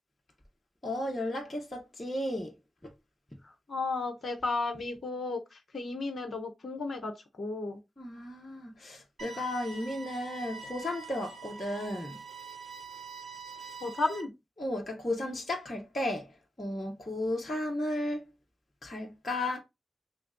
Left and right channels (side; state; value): both; normal; correlation 0.81